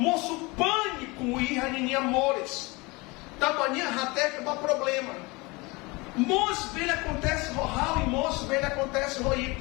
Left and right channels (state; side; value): quieter; right; 25.1 dB